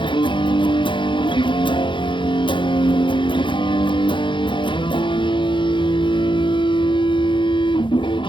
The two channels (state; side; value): late; right; 0.24 ms